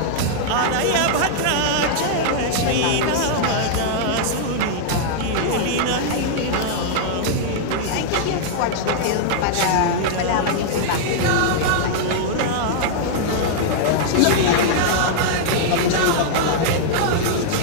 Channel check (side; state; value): both; different; correlation -0.01